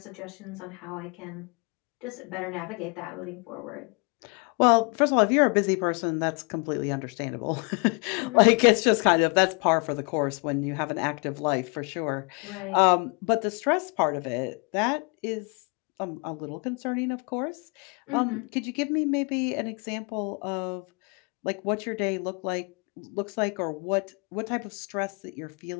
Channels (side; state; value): right; quieter; 33.3 dB